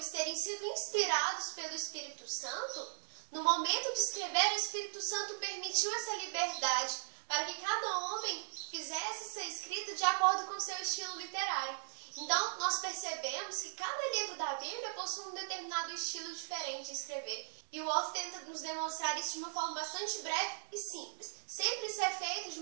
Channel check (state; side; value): silent; left; digital silence